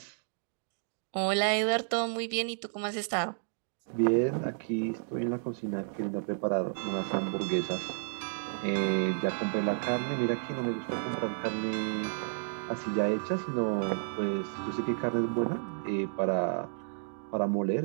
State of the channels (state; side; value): silent; left; digital silence